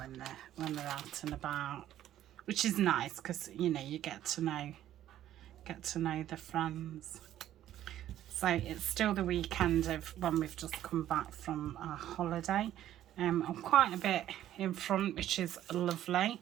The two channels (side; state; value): left; quieter; 12.3 dB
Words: they're out and about, which is nice because, you know, you get to know the friends. So it's still the weekend of when we've just come back from our holiday. I'm quite a bit in front, which is lovely.